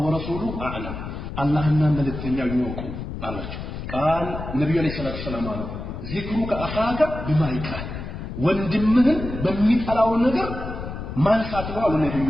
ورسوله اعلم አላህና መልእክተኛው ይወቁ አላቸው قال ነብዩ አለይሂ ሰላቱ ሰላም አሉ ذكرك اخاك بما يكره ወንድምህን በሚጠላው ነገር ማንሳት ነው አሉ ነብዩ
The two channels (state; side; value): noise; left; rumble, 8 dB below the sound